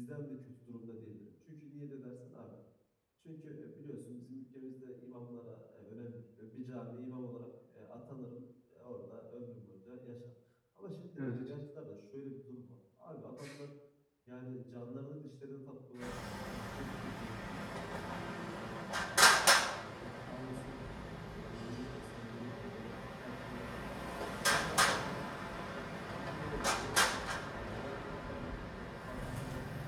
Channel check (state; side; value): identical; both; correlation 1.00